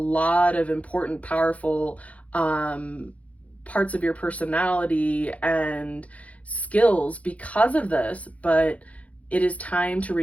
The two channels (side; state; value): right; late; 0.066 ms